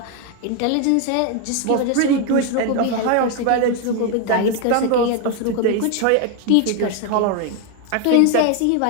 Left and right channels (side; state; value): both; different; correlation 0.01